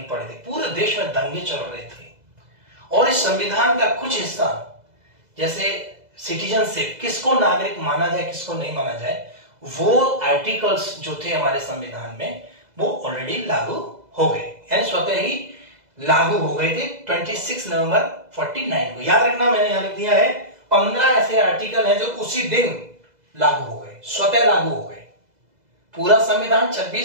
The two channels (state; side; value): late; left; 2.0 ms